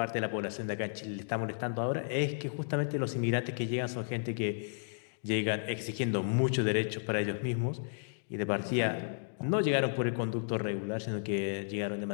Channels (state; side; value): silent; right; digital silence